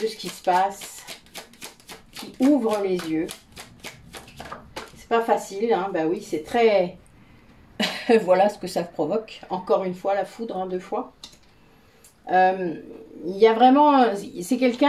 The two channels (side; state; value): both; identical; correlation 1.00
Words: ce qui se passe, qui ouvre les yeux. C'est pas facile, hein, bah oui, c'est très... voilà ce que ça provoque. Encore une fois, la foudre, hein, 2 fois. Il y a vraiment... C'est